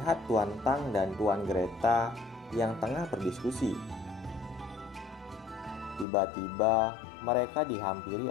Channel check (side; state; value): right; drops out; at 6.1 s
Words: Tuan Tang dan Tuan Greta yang tengah berdiskusi. Tiba-tiba, mereka dihampiri